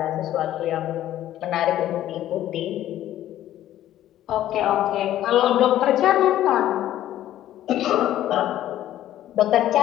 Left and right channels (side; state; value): right; quieter; 12.8 dB